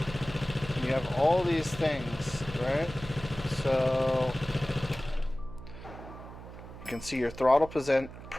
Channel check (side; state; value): right; noise; hum, 14 dB below the sound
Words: You have all these things, right? So you can see your throttle